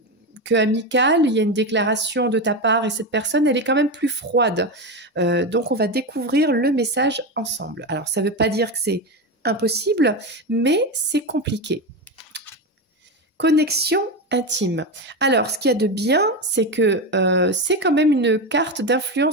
que amical, il y a une déclaration de ta part et cette personne, elle est quand même plus froide. Donc, on va découvrir le message ensemble. Alors, ça ne veut pas dire que c'est impossible, mais c'est compliqué. Connexion intime. Alors, ce qu'il y a de bien, c'est que c'est quand même une carte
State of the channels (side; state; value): both; normal; correlation 0.16